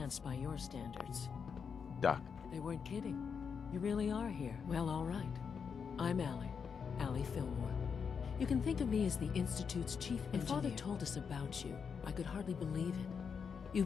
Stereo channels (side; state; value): right; quieter; 6.3 dB